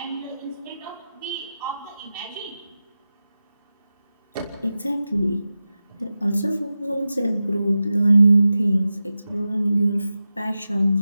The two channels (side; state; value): both; inverted; correlation -0.93